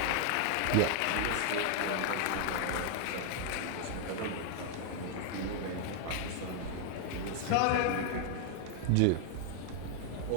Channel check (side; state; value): both; different; correlation 0.00